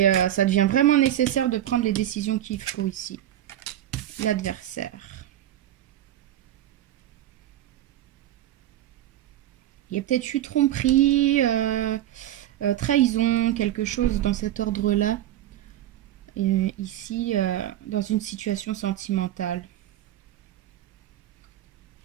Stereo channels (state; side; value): quieter; left; 12.5 dB